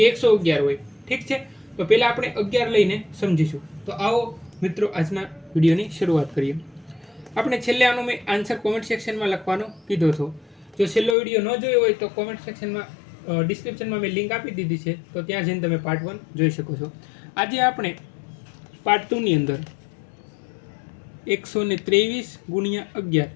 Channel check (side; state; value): right; drops out; at 11.2 s